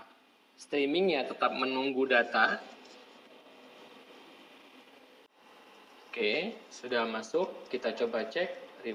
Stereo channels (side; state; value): both; identical; correlation 1.00